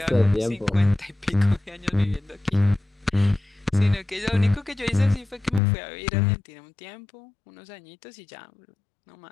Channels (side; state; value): right; drops out; at 5.6 s